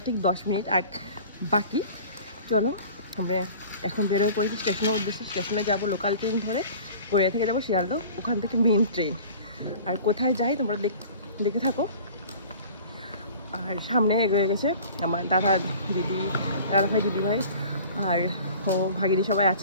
ঠিক 10 মিনিট বাকি। চলো আমরা এখন বেরোয় পড়েছি স্টেশনের উদ্দেশ্যে। স্টেশনে যাবো লোকাল ট্রেন ধরে, গড়িয়া থেকে যাবো শিয়ালদহ, ওখান থেকে মেন ট্রেন। আর কোথায় যাই তোমরা দেখে থাকো। আর সামনে এগিয়ে গেছে আমার দাদা ভাই দিদি ভাই আর ও ভাগিনী সবাই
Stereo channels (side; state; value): both; inverted; correlation -0.44